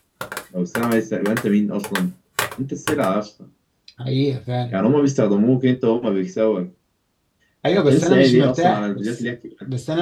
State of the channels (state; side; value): identical; both; correlation 1.00